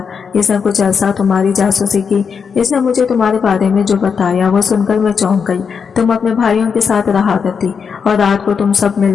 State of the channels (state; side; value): quieter; right; 6.2 dB